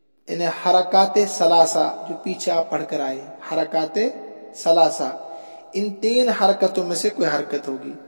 یعنی حرکات ثلاثہ جو پیچھے آپ پڑھ کر آئے، حرکات ثلاثہ، ان 3 حرکتوں میں سے کوئی حرکت ہوگی۔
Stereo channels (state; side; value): inverted; both; correlation -1.00